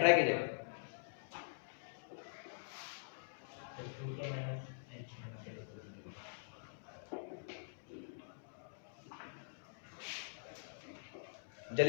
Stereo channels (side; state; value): right; silent; digital silence